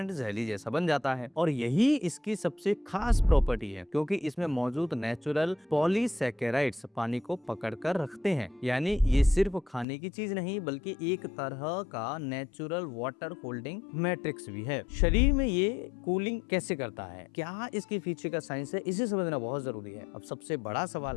जेली जैसा बन जाता है और यही इसकी सबसे खास प्रॉपर्टी है, क्योंकि इसमें मौजूद नेचुरल पॉलीसैकेराइड्स पानी को पकड़ कर रखते हैं। यानी ये सिर्फ खाने की चीज नहीं बल्कि एक तरह का नेचुरल वाटर होल्डिंग मैट्रिक्स भी है। शरीर में ये कूलिंग कैसे करता है, क्या इसके पीछे का साइंस है, इसे समझना बहुत जरूरी है। अब सबसे बड़ा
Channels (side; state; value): right; drops out; at 9.9 s